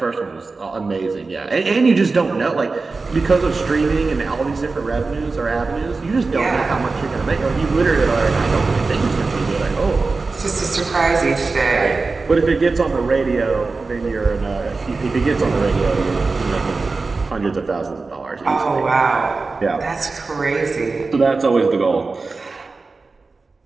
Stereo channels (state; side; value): quieter; left; 3.9 dB